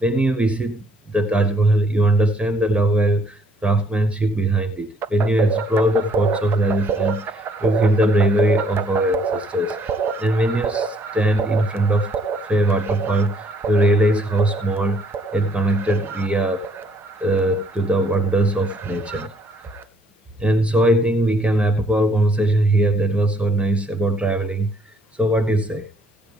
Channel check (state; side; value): normal; both; correlation 0.64